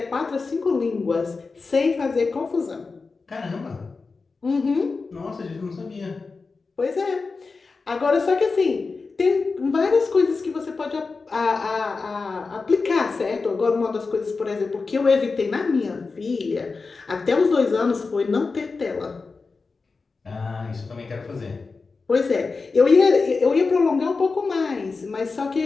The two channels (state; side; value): quieter; right; 4.3 dB